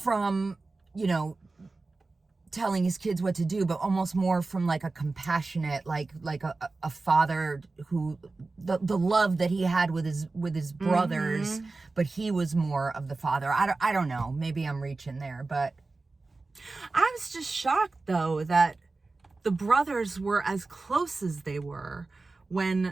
telling his kids what to do, but almost more from like a compassionate, like a father who, the love that he had with his brothers, but he was more of the father. I don't know. Maybe I'm reaching there, but I was just shocked though that the brothers were as close as they were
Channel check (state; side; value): quieter; left; 3.6 dB